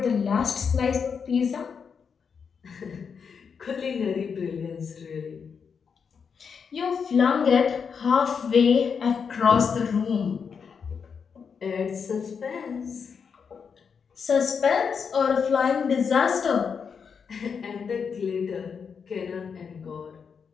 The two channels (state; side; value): quieter; right; 6.3 dB